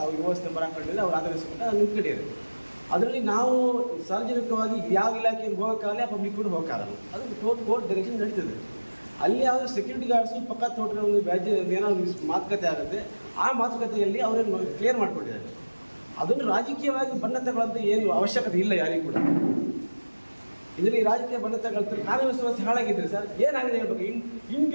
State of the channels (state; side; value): inverted; both; correlation -1.00